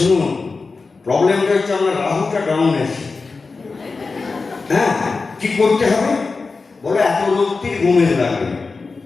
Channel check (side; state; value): right; quieter; 4.2 dB